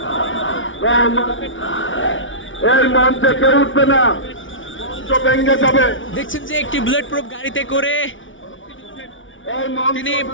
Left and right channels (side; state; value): right; late; 0.56 ms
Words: দেখছেন যে একটি বুলেট প্রুফ গাড়িতে করে তিনি